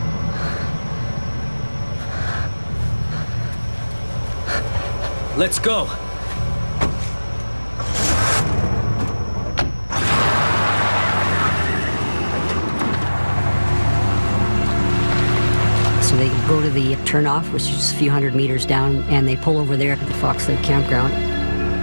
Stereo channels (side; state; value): both; inverted; correlation -1.00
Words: Let's go. So they go to the turnoff, which is a few hundred meters down, and they pull over there at the Fox Lake campground.